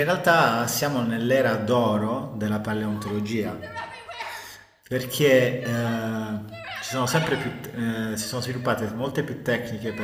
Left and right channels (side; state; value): both; identical; correlation 1.00